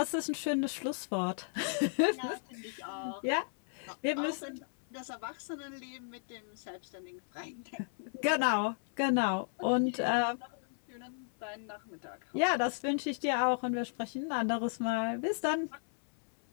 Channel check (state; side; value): silent; right; 55 dB below the other